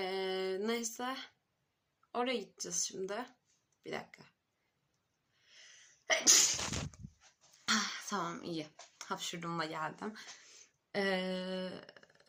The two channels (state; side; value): identical; both; correlation 1.00